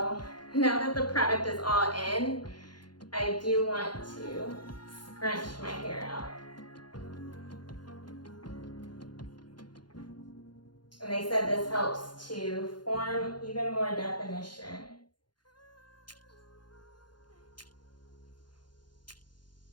now that the product is all in, I do want to scrunch my hair out. And they said this helps to form even more definition.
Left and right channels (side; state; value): right; late; 0.71 ms